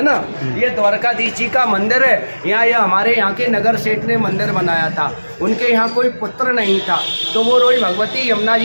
ना। ये द्वारकाधीश जी का मंदिर है। यहाँ ये हमारे यहाँ के नगर सेठ ने मंदिर बनाया था। उनके यहाँ कोई पुत्र नहीं था, तो वो रोज भगवती यमुना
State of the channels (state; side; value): inverted; both; correlation -1.00